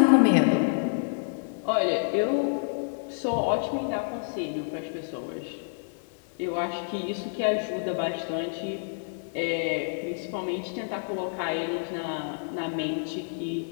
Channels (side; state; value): right; silent; digital silence